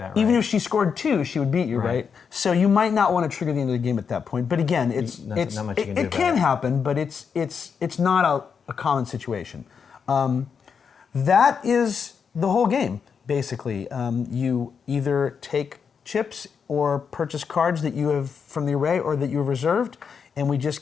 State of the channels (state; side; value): quieter; right; 6.4 dB